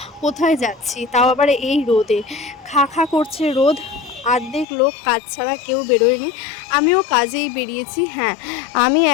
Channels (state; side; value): drops out; right; at 4.7 s